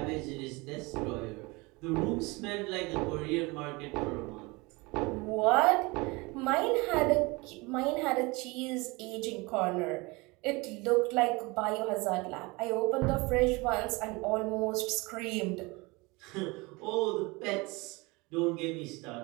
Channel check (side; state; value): left; quieter; 25.2 dB